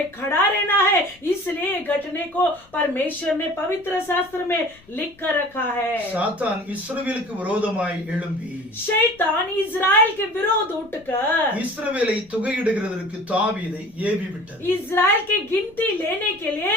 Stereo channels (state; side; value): noise; left; rumble, 28 dB below the sound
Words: खड़ा रहना है, इसलिए घटने को परमेश्वर ने पवित्र शास्त्र में लिख कर रखा है। சாத்தான் இஸ்ரவேலுக்கு விரோதமாய் எழும்பி शैतान इजराइल के विरोध उठकर இஸ்ரவேலை தொகையிடுகிறதற்கு தாவீதை ஏவி விட்டது. इजराइल की गिनती लेने के लिए